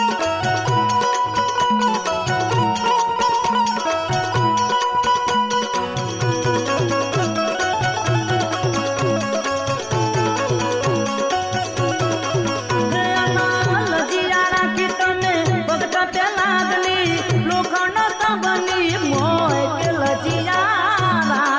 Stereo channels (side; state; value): both; identical; correlation 1.00